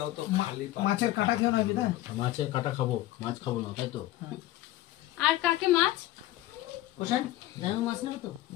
তো, খালি মাছের কাঁটা খেও না বিদা। মাছের কাটা খাবো, মাছ খাবো না, তাই তো? আর কাকে মাছ কোশান জানো মাছ নেবে তো?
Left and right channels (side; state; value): right; quieter; 15.5 dB